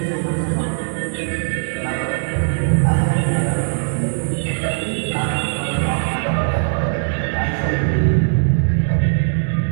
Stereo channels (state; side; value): silent; left; digital silence